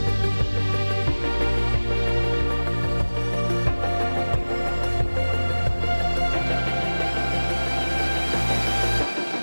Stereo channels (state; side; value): inverted; both; correlation -1.00